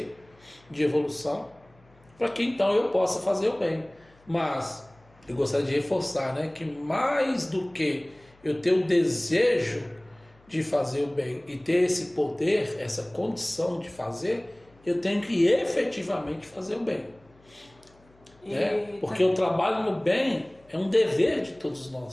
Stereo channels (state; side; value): noise; left; hum, 30 dB below the sound